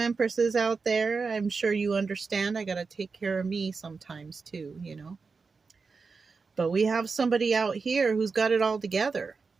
out there. I'm sure you understand. I got to take care of me sometimes too, you know. But we have somebody out here who's got it all together,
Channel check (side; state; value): left; quieter; 4.7 dB